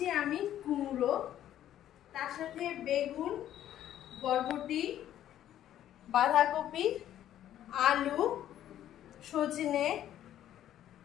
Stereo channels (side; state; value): right; quieter; 11.7 dB